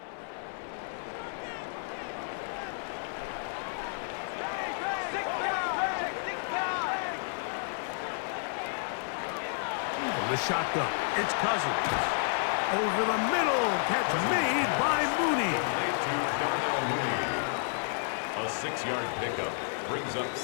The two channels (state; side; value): silent; right; 57 dB below the other